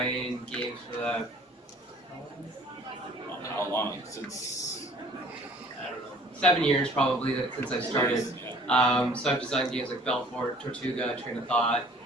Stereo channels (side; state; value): both; normal; correlation 0.53